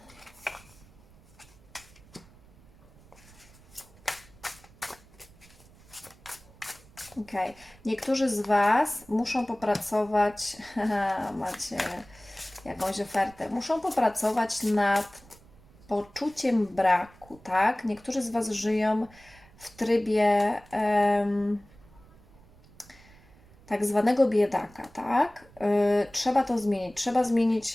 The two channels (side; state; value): right; noise; rumble, 25 dB below the sound